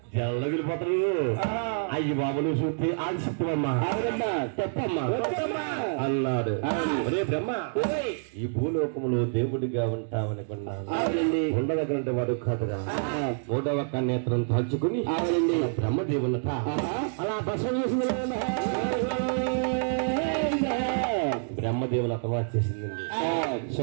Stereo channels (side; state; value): left; silent; digital silence